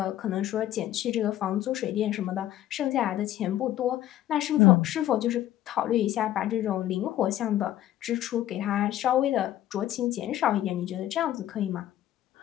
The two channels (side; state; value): right; quieter; 13.1 dB